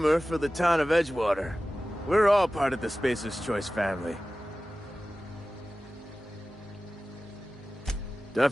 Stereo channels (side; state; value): both; normal; correlation 0.96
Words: for the town of Edgewater. We're all part of the Spacer's Choice family.